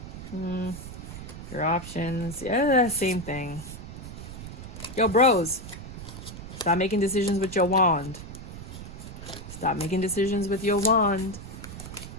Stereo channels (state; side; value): noise; right; rumble, 11 dB below the sound